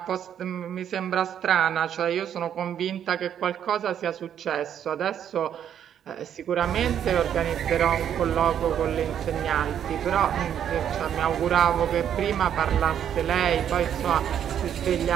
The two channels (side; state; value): left; quieter; 9.4 dB